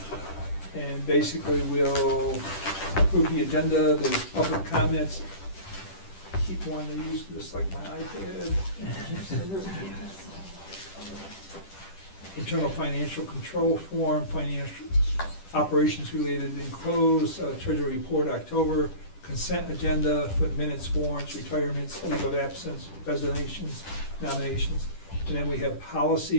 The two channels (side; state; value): right; late; 10 ms